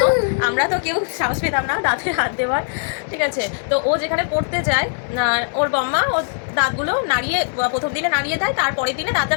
আমরা তো কেউ সাহস পেতাম না দাঁতে হাত দেওয়ার, ঠিক আছে। তো ও যেখানে পড়তে যায় ওর বম্মা ওর দাঁতগুলো নাড়িয়ে প্রথম দিনে নাড়িয়ে দেয়, তারপরের দিনে দাঁতটা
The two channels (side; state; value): right; silent; digital silence